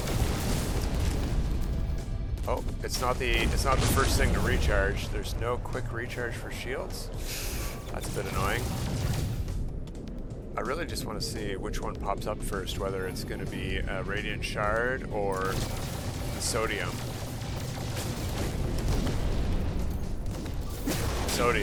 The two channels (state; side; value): identical; both; correlation 1.00